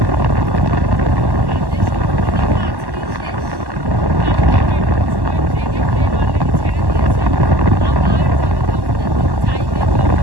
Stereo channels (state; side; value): late; left; 1.1 ms